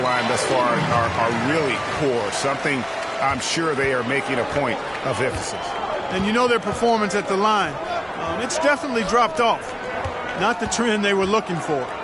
thus far are really poor. Something I'm sure they are making a point of emphasis. And you know their performance at the line. It's definitely dropped off. Not the trend they were looking for.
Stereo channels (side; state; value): both; identical; correlation 1.00